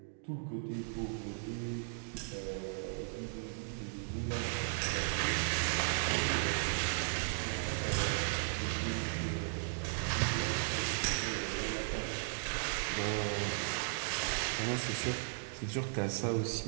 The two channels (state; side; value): silent; left; digital silence